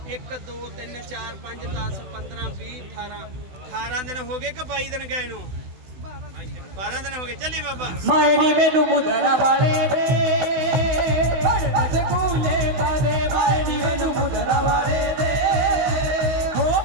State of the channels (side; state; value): left; late; 16 ms